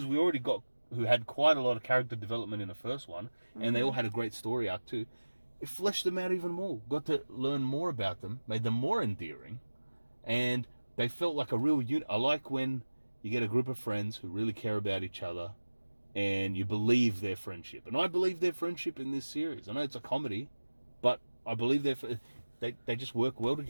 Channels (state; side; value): inverted; both; correlation -1.00